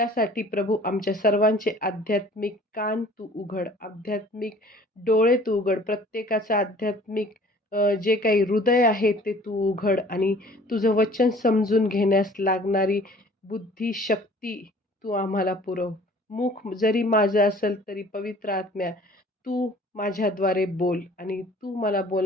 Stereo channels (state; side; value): normal; both; correlation 0.51